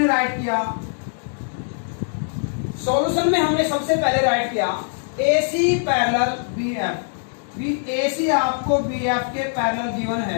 राइट किया, सॉल्यूशन में हमने सबसे पहले राइट किया ए सी पैरेलल बी एफ। ए सी आपको बी एफ के पैरेलल गिवन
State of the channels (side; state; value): right; silent; digital silence